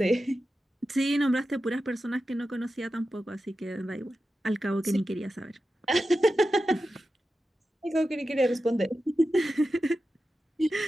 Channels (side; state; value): both; normal; correlation 0.92